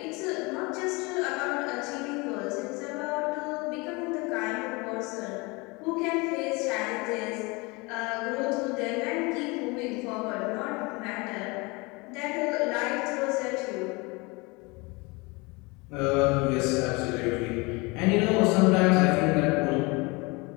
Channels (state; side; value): quieter; right; 26.4 dB